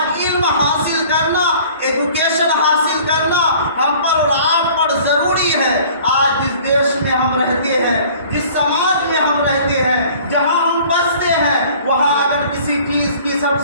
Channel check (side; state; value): both; inverted; correlation -0.50